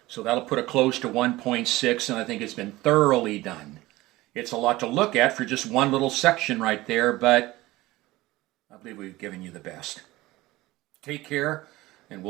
So that'll put a close to 1.6, and I think it's been thoroughly done. It's a lot to look at for just one little section right there, but I believe we've given you the best. Take care, and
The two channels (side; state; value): left; quieter; 18.7 dB